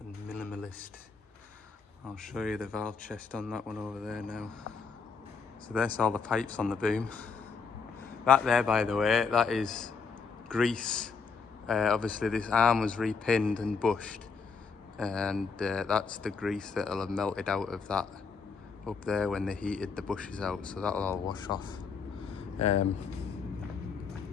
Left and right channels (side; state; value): right; quieter; 5.3 dB